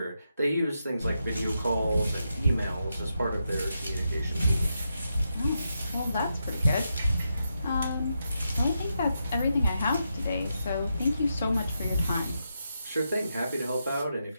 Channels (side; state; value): both; inverted; correlation -0.84